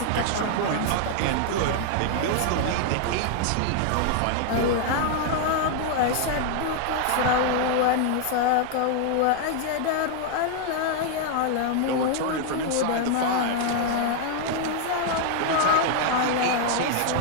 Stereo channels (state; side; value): different; both; correlation 0.00